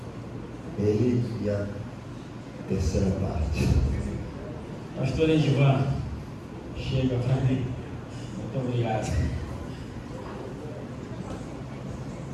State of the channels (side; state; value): both; identical; correlation 1.00